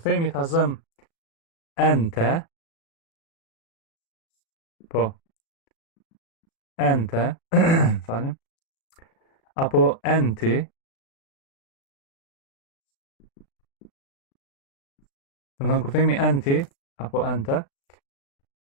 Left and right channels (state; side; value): late; right; 36 ms